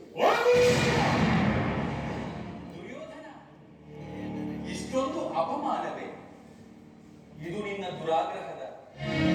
ದುರ್ಯೋಧನ, ಇಷ್ಟೊಂದು ಅಪಮಾನವೇ? ಇದು ನಿನ್ನ ದುರಾಗ್ರಹದ,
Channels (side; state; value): both; identical; correlation 1.00